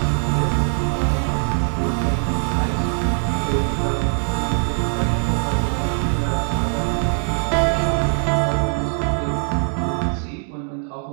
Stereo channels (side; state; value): left; silent; digital silence